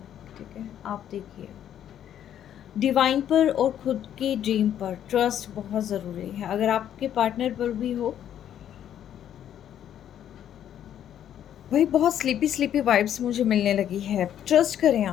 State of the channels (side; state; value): right; quieter; 10.3 dB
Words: ठीक है। आप देखिए डिवाइन पर और खुद की ड्रीम पर ट्रस्ट बहुत ज़रूरी है। अगर आपके पार्टनर पर भी हो, भाई बहुत स्लीपी स्लीपी वाइब्स मुझे मिलने लगी है। ट्रस्ट करें